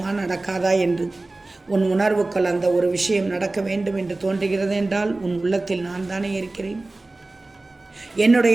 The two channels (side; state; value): left; quieter; 3.0 dB